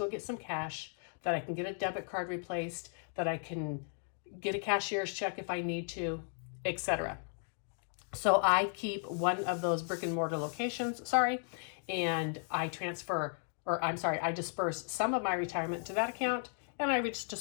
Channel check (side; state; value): right; silent; 54 dB below the other